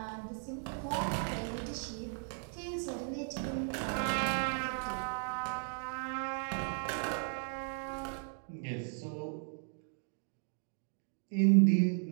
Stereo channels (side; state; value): left; silent; 54 dB below the other